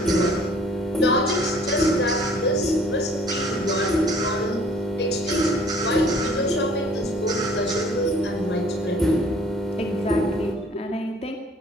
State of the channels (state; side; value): normal; both; correlation 0.54